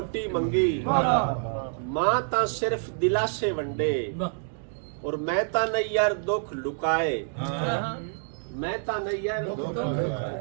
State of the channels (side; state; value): left; silent; digital silence